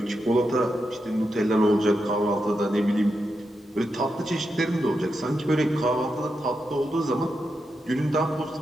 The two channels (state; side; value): normal; both; correlation 0.86